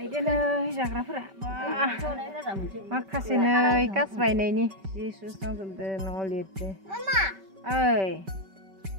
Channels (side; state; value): left; late; 5.2 ms